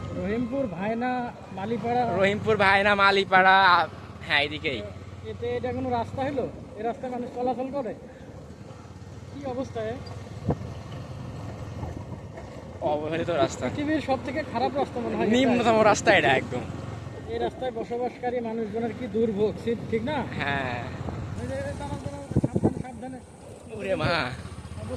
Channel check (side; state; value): both; identical; correlation 1.00